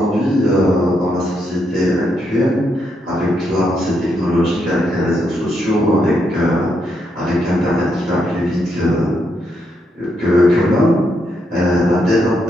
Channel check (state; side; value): normal; both; correlation 0.79